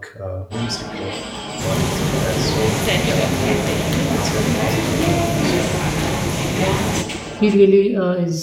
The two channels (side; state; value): both; identical; correlation 1.00